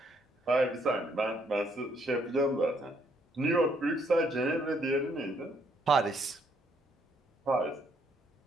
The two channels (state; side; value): normal; both; correlation 0.70